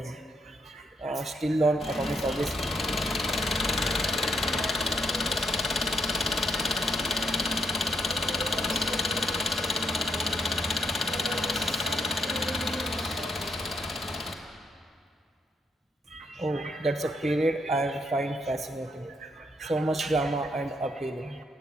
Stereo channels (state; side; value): normal; both; correlation 0.78